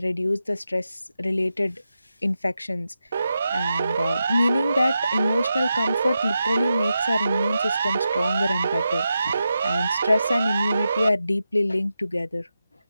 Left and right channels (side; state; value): both; inverted; correlation -0.89